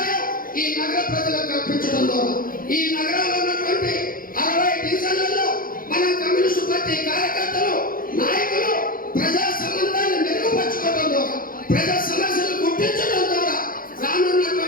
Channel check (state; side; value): late; right; 0.41 ms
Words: ఈ నగర ప్రజలకు కల్పించడం ద్వారా ఈ నగరంలో ఉన్నటువంటి 60 డివిజన్లలో మన కమ్యూనిస్టు పార్టీ కార్యకర్తలు, నాయకులు ప్రజా సంబంధాన్ని మెరుగుపరచుకోవడం ద్వారా, ప్రజా సమస్యలు గుర్తించడం ద్వారా